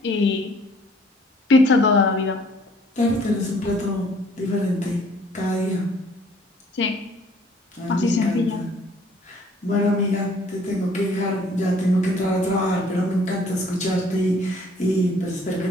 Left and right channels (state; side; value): normal; both; correlation 0.59